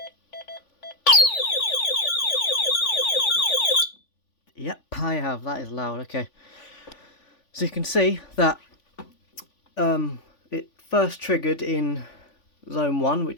Yep, I have. That is loud. Okay. So you can see that it first triggered in zone 1,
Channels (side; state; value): right; late; 3.5 ms